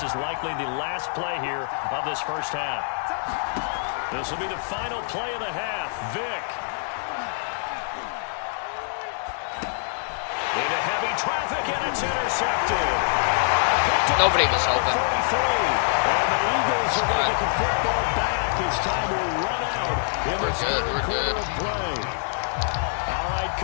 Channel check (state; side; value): silent; right; digital silence